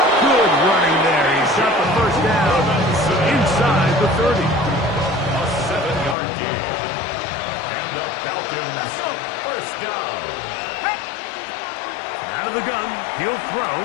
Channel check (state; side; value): drops out; right; at 6.2 s